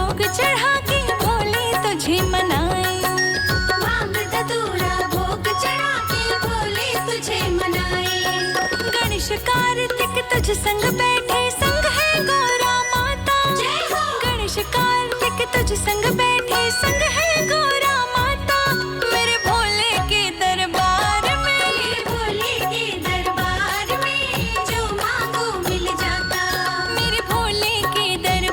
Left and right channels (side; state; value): both; identical; correlation 1.00